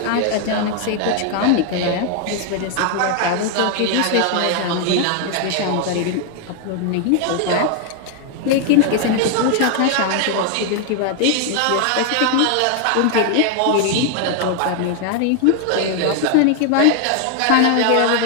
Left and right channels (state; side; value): different; both; correlation 0.00